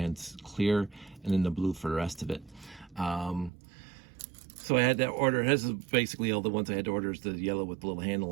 clear and then the blue for the rest of it. So I had to order, this is basically all the ones I had to order is the yellow with the little handle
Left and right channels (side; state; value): left; drops out; at 3.5 s